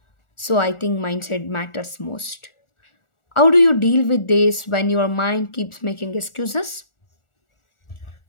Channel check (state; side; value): late; right; 1.4 ms